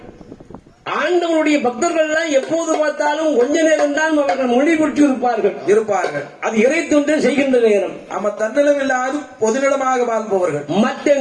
ஆண்டவனுடைய பக்தர்கள் எல்லாம் எப்போது பார்த்தாலும் கொஞ்ச நேரம் தான் அவர்கள் மொழிபுற்றி இருப்பார்கள். அது இறை தொண்டு செய்கின்ற நேரம். ஆமா, தன்னிலம் இல்லாது பொதுநிலமாக வாழ்பவர்கள். மற்ற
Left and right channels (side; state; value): both; identical; correlation 1.00